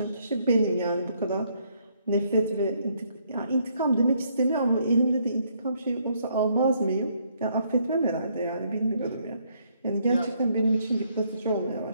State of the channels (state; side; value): inverted; both; correlation -0.70